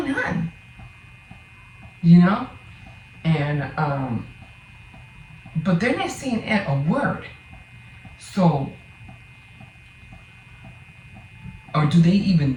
on? You know? And, but they're not saying a word. So, or do they even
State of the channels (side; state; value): both; identical; correlation 1.00